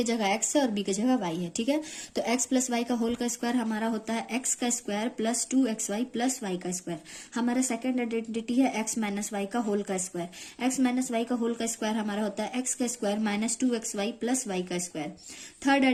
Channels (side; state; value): both; identical; correlation 1.00